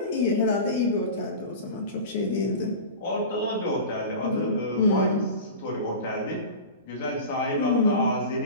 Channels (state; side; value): inverted; both; correlation -0.31